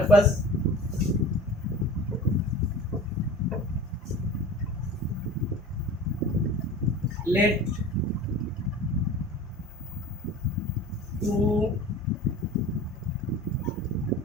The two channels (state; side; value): normal; both; correlation 0.39